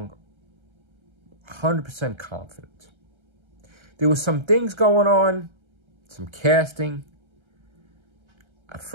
100% confident. There was some things going on, some casting. At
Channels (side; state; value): left; late; 1.3 ms